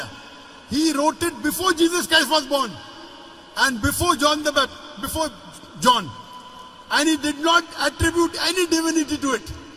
He wrote it before Jesus Christ was born, and before John the Baptist, before John. And he did not attribute any divinity to it.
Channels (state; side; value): identical; both; correlation 1.00